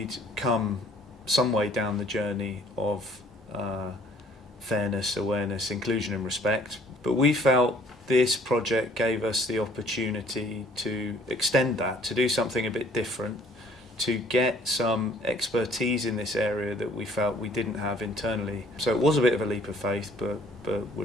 come some way down the journey of fairness, awareness, inclusion and respect, but we felt this project gave us the opportunity to extend that, to do something a bit different, to get some expertise in this area that we felt we didn't have internally. So it was a bit of a leap of faith, but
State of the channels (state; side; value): normal; both; correlation 0.58